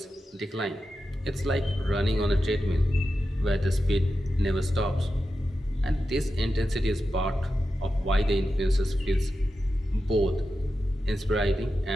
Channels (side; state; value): both; normal; correlation 0.91